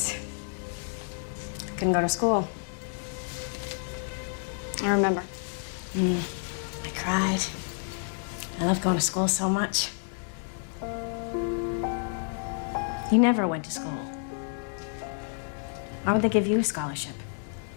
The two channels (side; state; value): right; silent; 58 dB below the other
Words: Couldn't go to school. I remember. I cried. I love going to school so much. You never went to school. Why would they give you a scholarship?